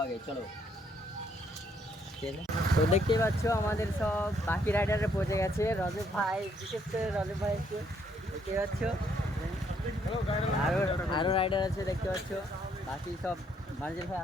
চলো। তো দেখতেই পাচ্ছ আমাদের সব বাকি রাইডারে পৌঁছে গেছে। রজব ভাই, বিশেষ করে রজব ভাই একটু দেখতে পাচ্ছ, আরও রাইডার আছে দেখতে পাচ্ছ। বাকি সব মার্জেল ভাই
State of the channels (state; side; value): normal; both; correlation 0.70